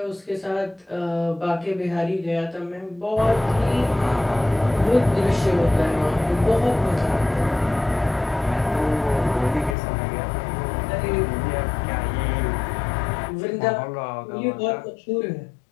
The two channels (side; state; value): right; drops out; at 9.8 s